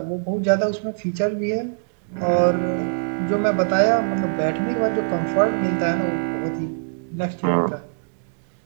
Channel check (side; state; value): left; silent; digital silence